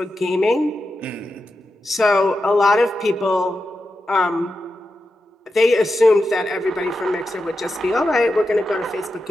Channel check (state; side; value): normal; both; correlation 0.89